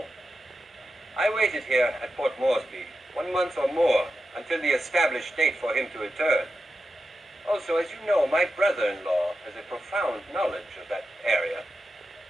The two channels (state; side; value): normal; both; correlation 0.90